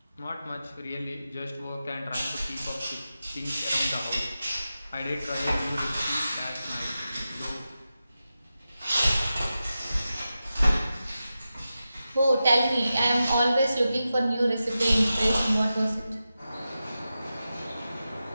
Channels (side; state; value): both; inverted; correlation -0.92